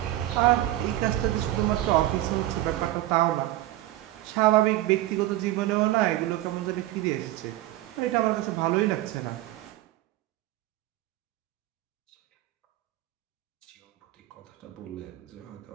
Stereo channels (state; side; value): quieter; left; 15.3 dB